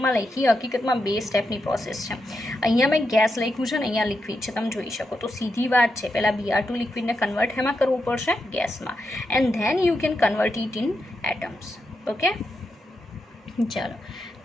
લખી, હકીકતમાં 2 સ્ટેપની પ્રોસેસ છે. અહીંયા મેં ગેસ લખ્યું છે ને અહીંયા લિક્વિડ છે, તમે જોઈ શકો. તો સીધી વાત છે, પહેલાં Br2 લિક્વિડને કન્વર્ટ એમાં કરવું પડશે, ગેસમાં, and then you can convert it in atoms, okay. ચાલો,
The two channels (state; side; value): normal; both; correlation 0.85